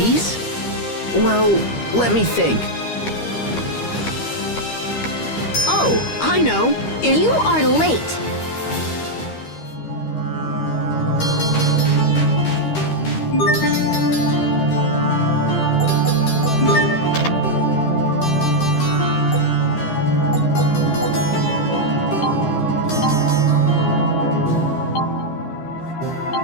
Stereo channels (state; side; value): late; right; 13 ms